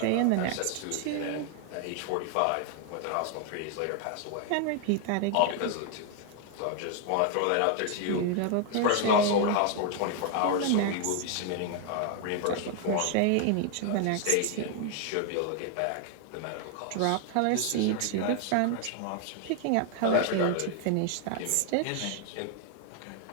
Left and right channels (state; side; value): different; both; correlation 0.00